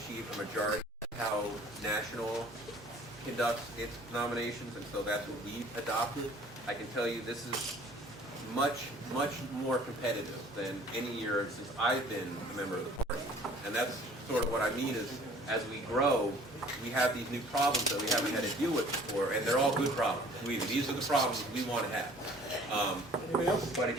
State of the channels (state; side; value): normal; both; correlation 0.52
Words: a majority. That's how national conducts its nominations, and so that's what we've adopted. I can tell you this is much more competitive than any year since I've been a member of the party. And that's sort of what I mean is, as we grow, we have these new problems that we haven't had to deal with before, and they're all good problems. These are the problems we want to have. But it